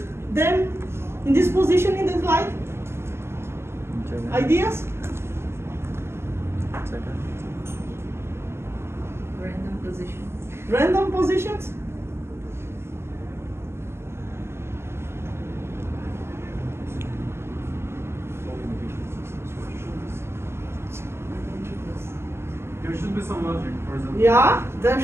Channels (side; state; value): left; late; 0.12 ms